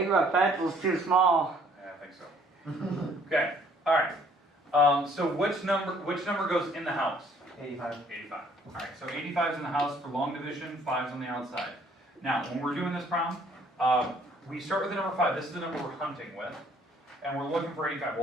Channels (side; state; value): both; normal; correlation 0.60